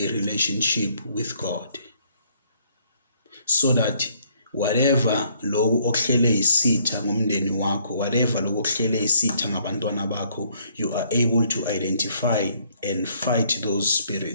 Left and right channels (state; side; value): inverted; both; correlation -0.66